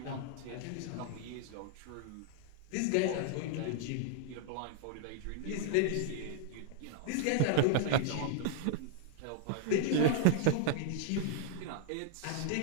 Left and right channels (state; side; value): different; both; correlation -0.01